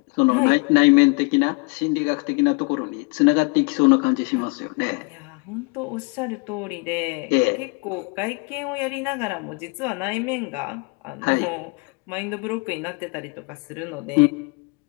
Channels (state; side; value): quieter; right; 31.0 dB